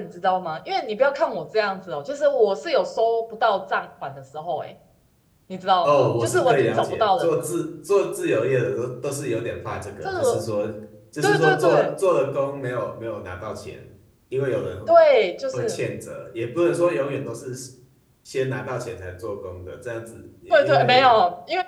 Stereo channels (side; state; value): both; identical; correlation 1.00